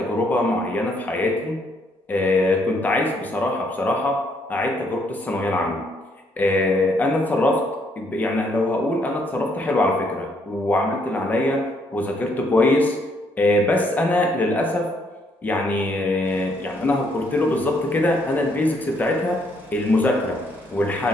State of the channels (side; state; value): both; normal; correlation 0.70